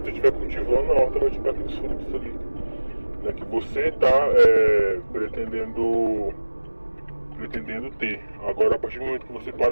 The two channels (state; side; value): inverted; both; correlation -1.00